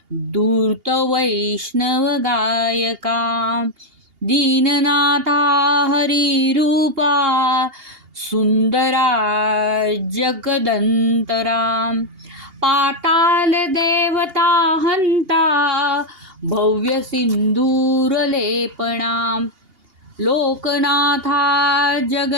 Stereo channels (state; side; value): late; left; 2.8 ms